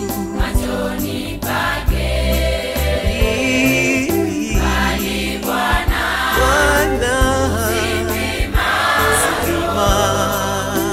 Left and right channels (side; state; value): both; identical; correlation 1.00